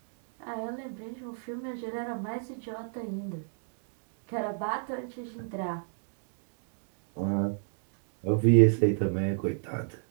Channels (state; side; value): silent; left; digital silence